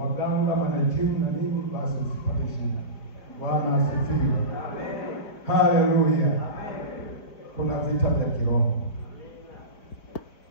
kama na jimu na nini, basi usipate shida. Bwana asifiwe. Amen. Haleluya. Amen. Kuna vita vya kiroho.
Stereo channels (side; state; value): right; late; 4.5 ms